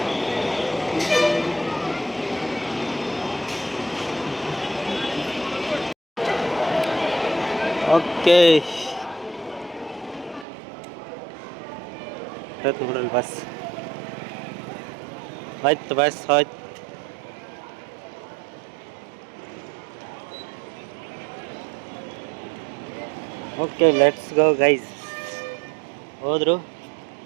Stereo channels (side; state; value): left; drops out; at 10.5 s